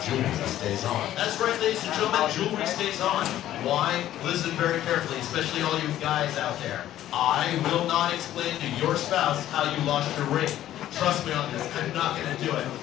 jewelry stays on. That's right, ladies and gentlemen, jewelry stays on. Why? Listen very carefully, especially all you guys out there. I will not explain to your spouse how you lost your ring. Trust me on this, I'm not going to do it.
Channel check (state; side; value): quieter; right; 12.8 dB